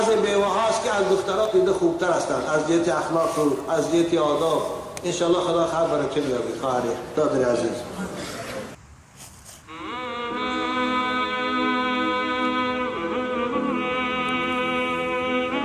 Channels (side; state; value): both; identical; correlation 1.00